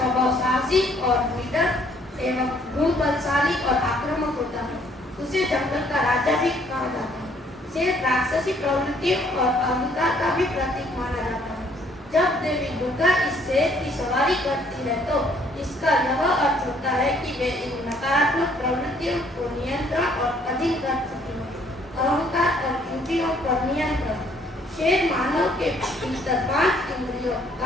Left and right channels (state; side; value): normal; both; correlation 0.63